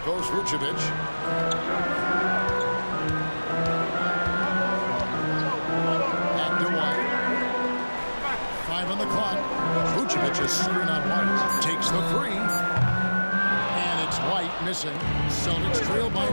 Vucevic. Back to White. 5 on the clock. Vucevic is screen on White. Takes the three. And it's White missing. Celtics trail by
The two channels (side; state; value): both; inverted; correlation -1.00